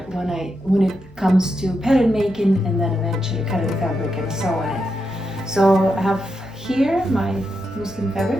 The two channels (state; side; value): normal; both; correlation 0.85